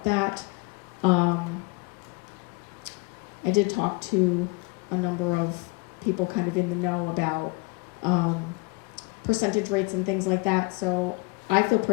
that. I did talk to a number of people kind of in the know about percentage rates and things like that. So I feel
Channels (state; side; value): quieter; right; 27.7 dB